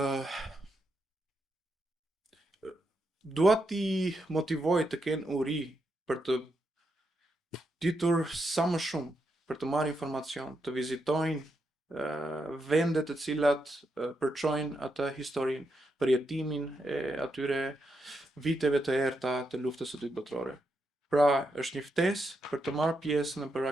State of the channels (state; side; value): normal; both; correlation 0.83